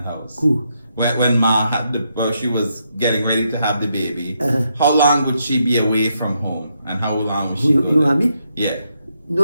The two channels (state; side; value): inverted; both; correlation -0.79